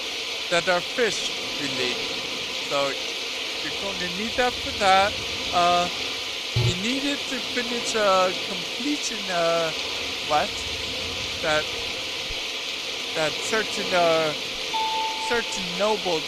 that are fish related. So you're going to need that for that. You need it to finish a completion quest that certain nobles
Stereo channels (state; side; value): identical; both; correlation 1.00